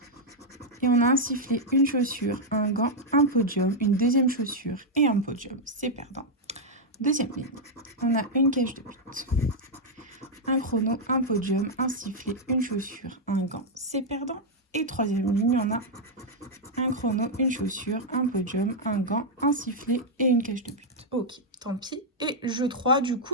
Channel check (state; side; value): normal; both; correlation -0.02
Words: Et on a un sifflet, une chaussure, un gant, un podium, une deuxième chaussure et un podium. C'est perdant. Deuxième ligne, on a une cage de but, un chrono, un podium, un sifflet, une chaussure, un gant. C'est perdant. Et troisième ligne, on a un chrono, une chaussure, un podium, un gant, un sifflet et une cage de but. Ok, tant pis. Et jeu 3, du